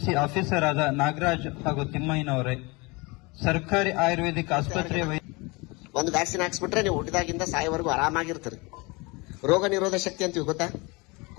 ಆಫೀಸರ್ ಆದ ನಾಗರಾಜ್ ಹಾಗೂ ತಿಮ್ಮಯ್ಯನವರೇ, ಸರ್ಕಾರಿ ಆಯುರ್ವೇದಿಕ್ ಆಸ್ಪತ್ರೆಯ ಒಂದು ವ್ಯಾಕ್ಸಿನ್ ಹಾಕ್ಸ್ಬಿಟ್ರೆ ನೀವು ಹುಟ್ಟಿದಾಗಿಂದ ಸಾಯೋವರೆಗೂ ಆರಾಮಾಗಿರ್ತೀರಿ. ರೋಗ ನಿರೋಧ ಶಕ್ತಿ ಅಂತೀವಿ ಗೊತ್ತಾ?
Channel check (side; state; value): right; quieter; 26.3 dB